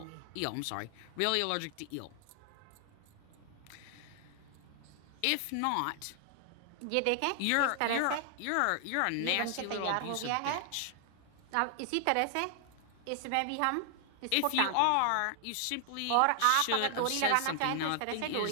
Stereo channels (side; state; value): both; different; correlation 0.00